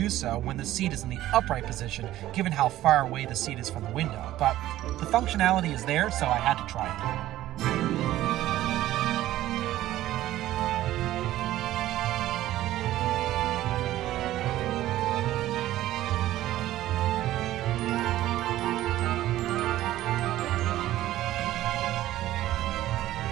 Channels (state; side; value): quieter; left; 14.5 dB